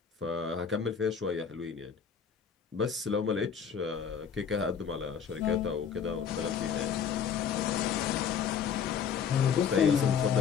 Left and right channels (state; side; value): quieter; right; 7.1 dB